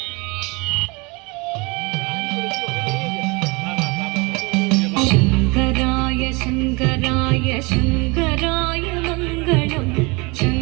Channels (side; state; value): left; quieter; 27.1 dB